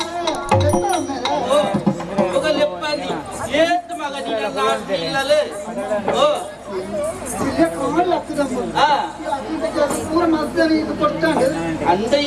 ఒక లెప్పది ఏత మగ నీళ్ళలే ఓ அந்த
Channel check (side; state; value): both; identical; correlation 1.00